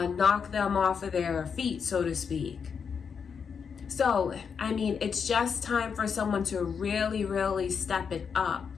knock them off of their feet, so to speak. So, I mean, it's just time for someone to really step it up.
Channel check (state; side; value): quieter; right; 6.4 dB